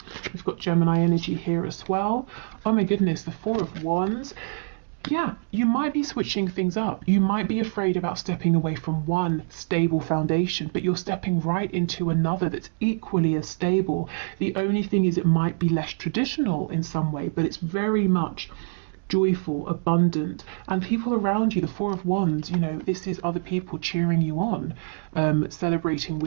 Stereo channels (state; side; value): silent; left; digital silence